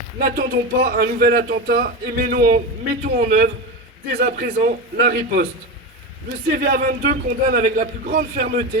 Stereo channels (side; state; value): both; normal; correlation 0.20